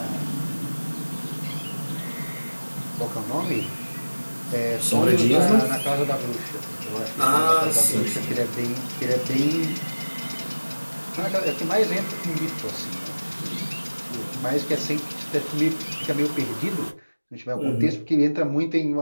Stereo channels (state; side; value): inverted; both; correlation -1.00